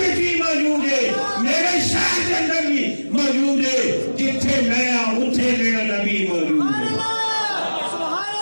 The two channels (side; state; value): both; inverted; correlation -1.00